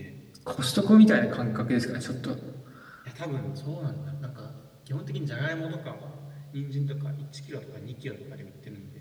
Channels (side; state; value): both; identical; correlation 1.00